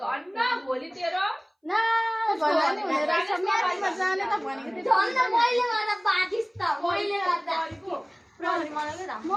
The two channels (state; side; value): identical; both; correlation 1.00